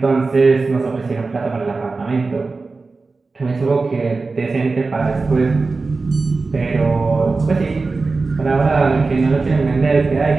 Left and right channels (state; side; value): quieter; left; 3.9 dB